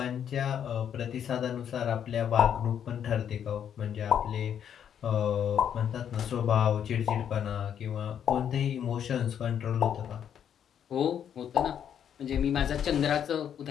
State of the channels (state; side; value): quieter; right; 8.9 dB